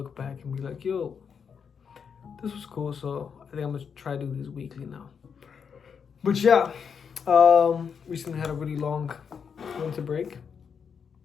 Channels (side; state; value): right; quieter; 6.7 dB